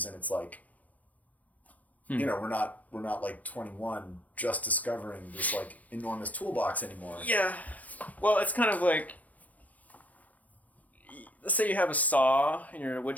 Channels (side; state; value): right; late; 0.076 ms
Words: and it's like, we're not like 21 just discovering this like enormous toolbox anymore. Yeah. Well, it's kind of like, let's say you have a saw and you're in a wood